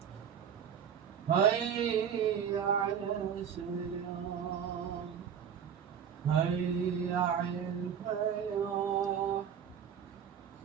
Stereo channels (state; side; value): quieter; left; 8.1 dB